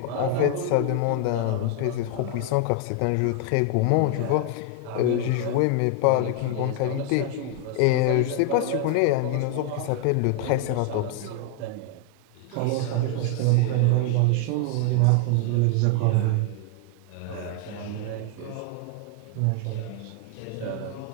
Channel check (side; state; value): both; different; correlation 0.00